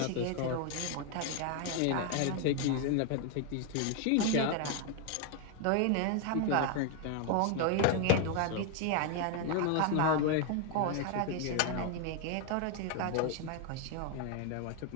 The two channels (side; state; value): both; different; correlation 0.01